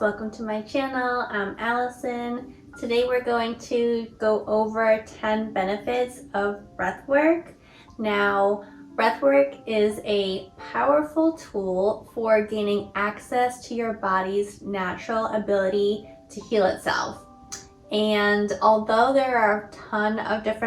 to my channel. I'm Alacyn. Today we're going to go over 10 benefits of breathwork. Now, breathwork is a powerful tool for gaining access to your body's natural ability to heal itself. And although there are a ton of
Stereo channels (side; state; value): both; identical; correlation 1.00